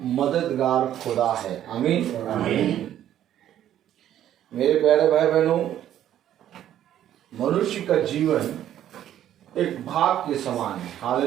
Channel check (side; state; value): left; quieter; 11.4 dB